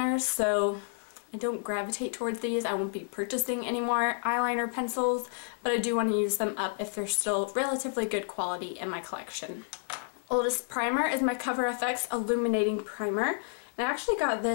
so I don't gravitate towards these. I won't be purchasing any more eyeliner pencils, but I do want to use them up if they're still relatively good quality in my collection. Oldest primer is my Cover FX Illuminating Primer. And I actually got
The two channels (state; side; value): silent; right; digital silence